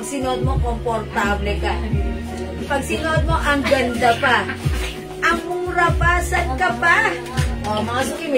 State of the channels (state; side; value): identical; both; correlation 1.00